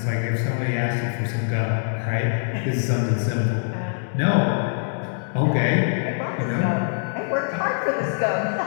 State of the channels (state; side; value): silent; right; digital silence